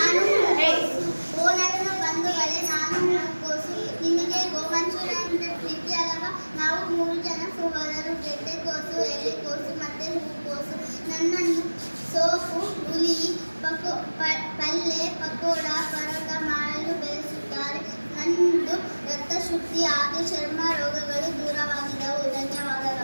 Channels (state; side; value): inverted; both; correlation -1.00